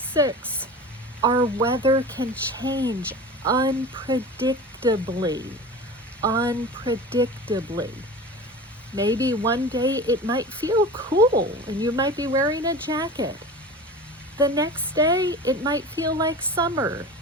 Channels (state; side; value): normal; both; correlation 0.34